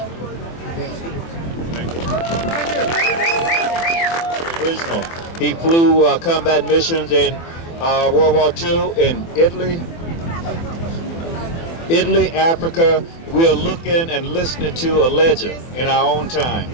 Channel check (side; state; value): right; late; 24 ms